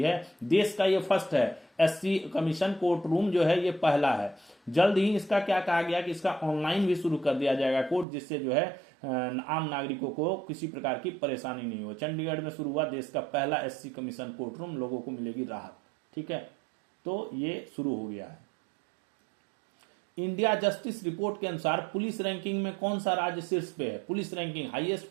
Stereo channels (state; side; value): drops out; left; at 8.1 s